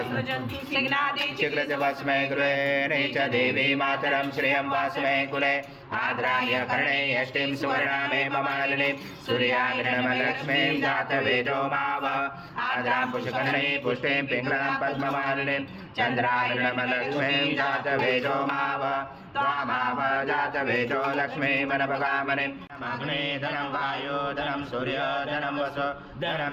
चिक्रज भस्मे गृहे च देवी मातरं श्रियं भस्मे कुले आद्राय कर्णे यष्टिं सुवर्णामेव मालिनीं सूर्याग्निर्मलक्ष्मीं जातवेदो माव आद्रां पुष्कर्णे पुष्टिं पिङ्गलां पद्ममालिनीं चन्द्राग्निर्मलक्ष्मीं जातवेदो माव त्वामाव जातवेदो लक्ष्मीमनपगामनिम् अग्ने धनं वायो धनं सूर्य धनं वसु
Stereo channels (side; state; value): both; identical; correlation 1.00